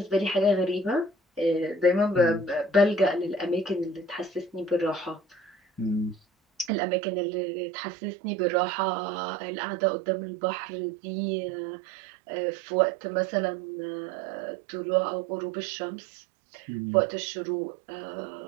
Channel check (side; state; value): left; drops out; at 6.7 s